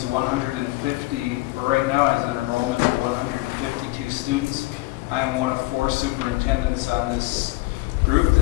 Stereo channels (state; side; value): quieter; right; 21.4 dB